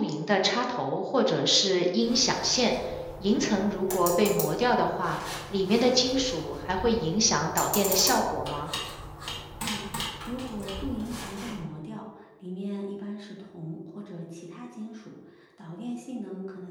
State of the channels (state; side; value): identical; both; correlation 1.00